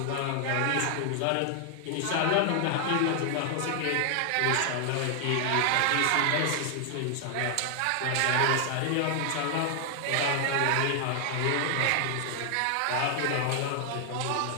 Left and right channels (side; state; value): both; different; correlation 0.00